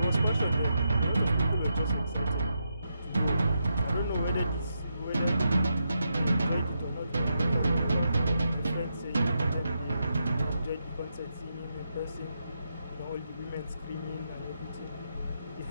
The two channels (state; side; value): inverted; both; correlation -0.84